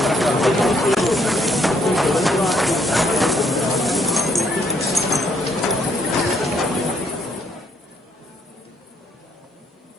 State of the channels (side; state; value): both; normal; correlation 0.70